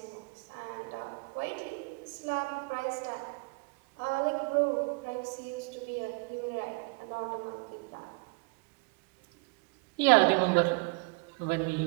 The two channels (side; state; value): left; quieter; 30.4 dB